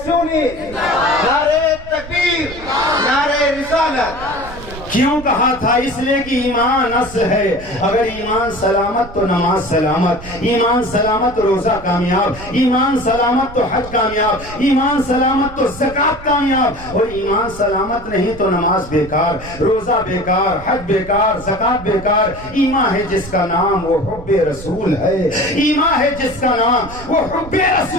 سنی، نعرے تکبیر، نعرے رسالت۔ کیوں کہا تھا؟ اس لیے کہ ایمان اصل ہے، اگر ایمان سلامت تو نماز سلامت، ایمان سلامت روزہ کامیاب، ایمان سلامت تو حج کامیاب، ایمان سلامت تو زکوٰۃ کامیاب، اور ایمان سلامت نہیں تو نماز بیکار، روزہ بیکار، حج بیکار، زکوٰۃ بیکار۔ ایمان ہے جس کا نام وہ حب رسول ہے، ایمان ہے جس کا نام وہ حب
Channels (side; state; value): right; noise; rumble, 14 dB below the sound